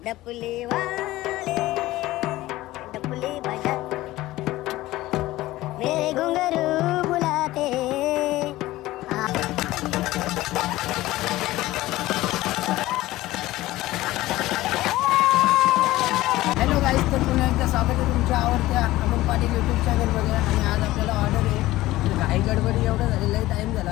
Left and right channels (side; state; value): right; quieter; 17.1 dB